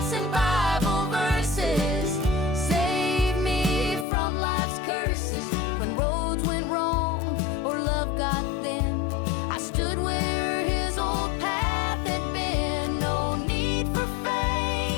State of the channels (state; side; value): drops out; right; at 4.0 s